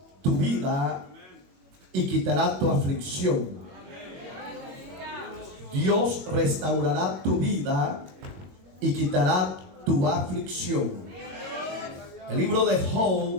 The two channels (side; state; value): left; late; 21 ms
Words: tu vida y quitará tu aflicción. Dios restaurará tu vida y quitará tu aflicción. El libro de